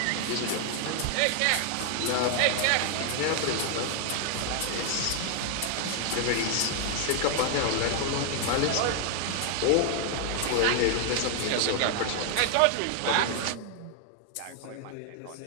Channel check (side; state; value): both; different; correlation 0.00